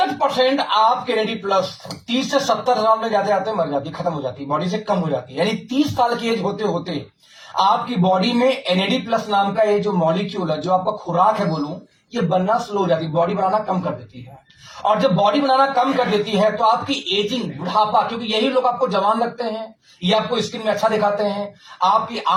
आपके एनएडी प्लस 30 से 70 साल में जाते जाते मर जाती, खत्म हो जाती, बॉडी से कम हो जाती है। यानी 30 साल की एज होते होते आपकी बॉडी में एनएडी प्लस नाम का ये जो मॉलिक्यूल है, जो आपका खुराक है बोलूं, ये बनना स्लो हो जाती, बॉडी बनाना कम कर देती है। और जब बॉडी बनाना कम कर देती है तो आपकी एजिंग, बुढ़ापा, क्योंकि यही लोग आपको जवान लगते हैं, ये आपको स्किन में अच्छा दिखाते हैं, आपकी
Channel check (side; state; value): both; identical; correlation 1.00